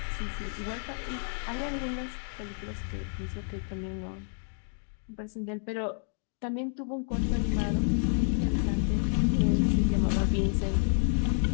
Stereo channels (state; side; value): silent; right; 56 dB below the other